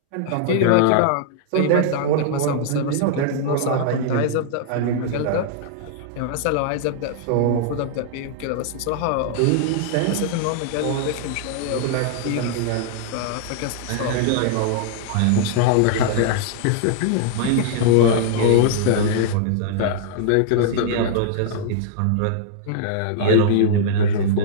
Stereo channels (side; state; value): both; different; correlation -0.01